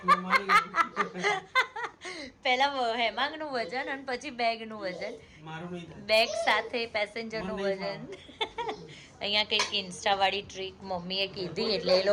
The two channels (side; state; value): both; identical; correlation 1.00